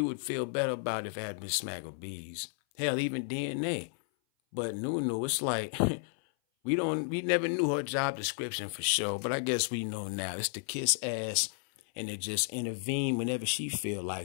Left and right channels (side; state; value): right; silent; 56 dB below the other